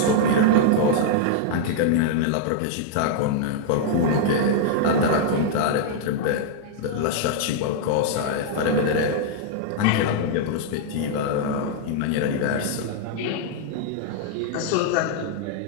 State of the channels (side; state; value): both; different; correlation -0.01